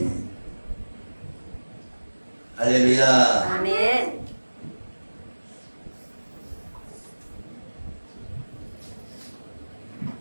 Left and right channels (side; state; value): both; inverted; correlation -1.00